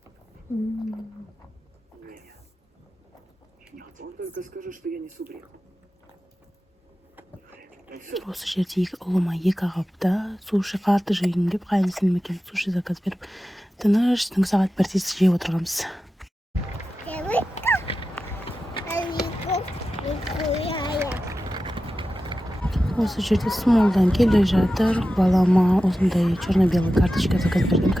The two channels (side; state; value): both; normal; correlation 0.93